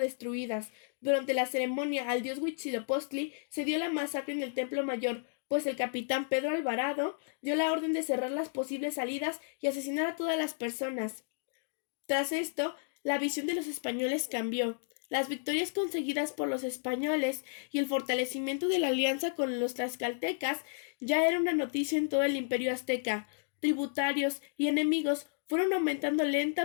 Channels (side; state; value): right; silent; digital silence